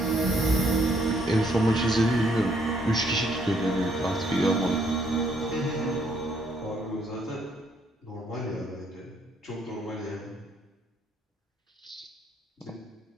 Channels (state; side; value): normal; both; correlation 0.69